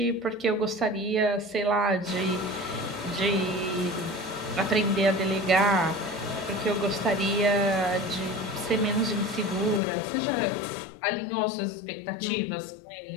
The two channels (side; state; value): right; drops out; at 9.8 s